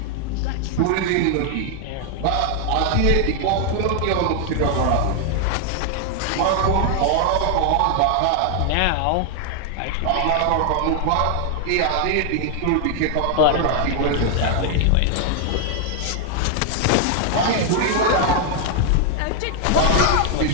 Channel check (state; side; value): different; both; correlation 0.00